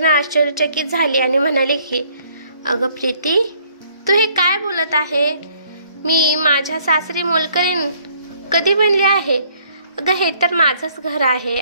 आश्चर्यचकित झाली आणि म्हणाली की अगं प्रीती, तू हे काय बोलत आहे? मी माझ्या सासरी मोलकरीण कधी बनली आहे? अगं हे तर माझंच घर आहे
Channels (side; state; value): both; inverted; correlation -0.63